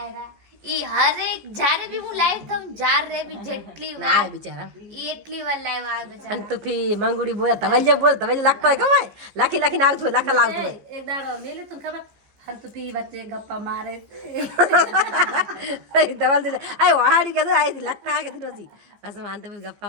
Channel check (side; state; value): left; late; 15 ms